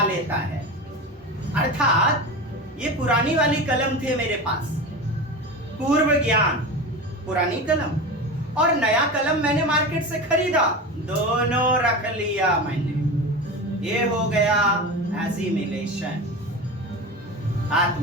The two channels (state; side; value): normal; both; correlation 0.27